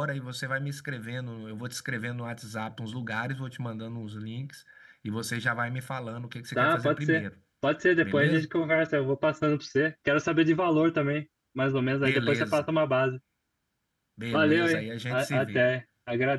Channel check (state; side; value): identical; both; correlation 1.00